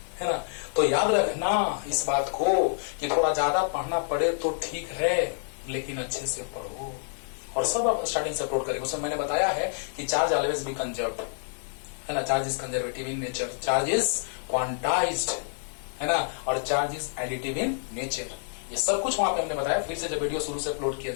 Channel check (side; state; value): right; silent; digital silence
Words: है ना। तो याद रखना इस बात को कि थोड़ा ज्यादा पढ़ना पड़े तो ठीक है, लेकिन अच्छे से पढ़ो। और सब आप स्टार्टिंग से अपलोड करेंगे। उसमें मैंने बताया है कि चार्ज ऑलवेज बी कंजर्व्ड, है ना, charge is conservative in nature, charge is quantized, है ना, और charge is additive in nature. ये सब कुछ वहां पे हमने बताया। फिर से जब वीडियो शुरू से अपलोड किया